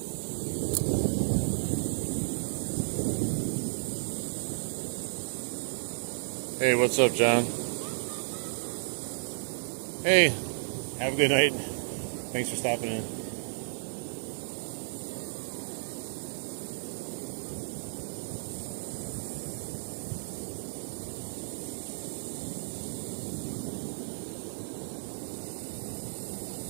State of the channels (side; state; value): left; silent; digital silence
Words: Hey, what's up, John? Hey, have a good night. Thanks for stopping in.